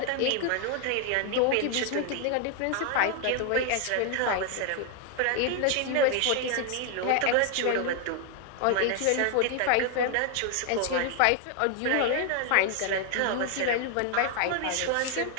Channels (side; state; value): both; different; correlation 0.00